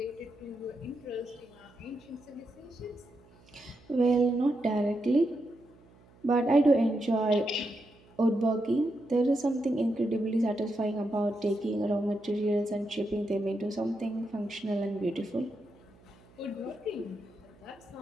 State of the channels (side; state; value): right; noise; hum, 27 dB below the sound